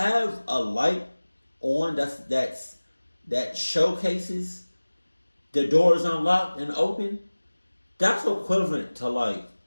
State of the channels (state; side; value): inverted; both; correlation -1.00